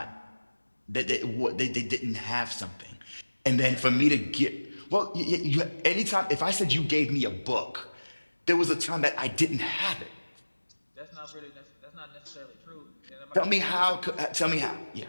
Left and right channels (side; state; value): both; inverted; correlation -1.00